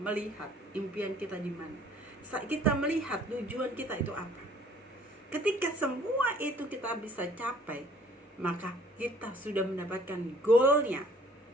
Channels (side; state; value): both; normal; correlation 0.56